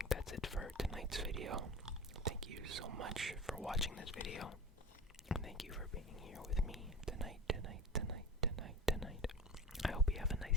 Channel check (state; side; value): normal; both; correlation 0.32